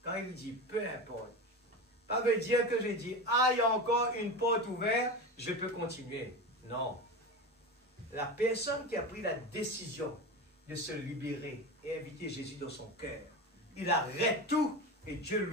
Quand il dit peu importe, ça veut dire que je dis, ah, il y a encore une porte ouverte, je peux continuer. Non. La personne qui a pris la décision de se libérer et inviter Jésus dans son cœur, il arrête tout et Dieu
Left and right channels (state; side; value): normal; both; correlation 0.25